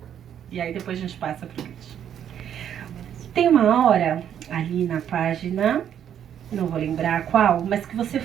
E aí depois a gente passa para o Christian. Tem uma hora ali na página, não vou lembrar qual, mas que você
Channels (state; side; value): quieter; left; 9.5 dB